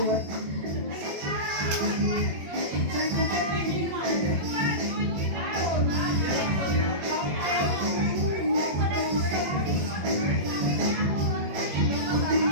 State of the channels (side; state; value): left; late; 21 ms